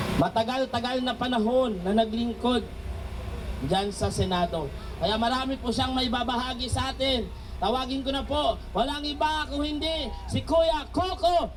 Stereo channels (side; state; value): both; identical; correlation 1.00